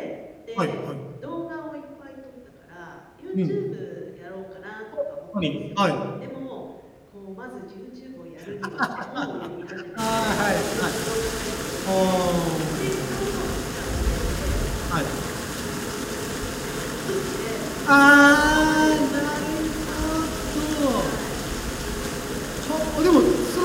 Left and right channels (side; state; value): both; identical; correlation 1.00